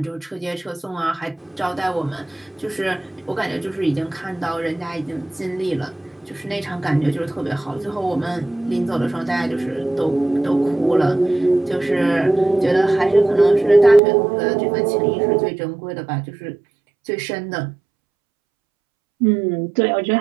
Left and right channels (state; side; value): drops out; left; at 14.0 s